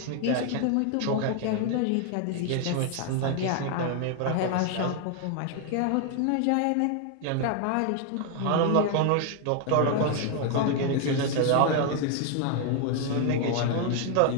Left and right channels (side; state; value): both; different; correlation 0.01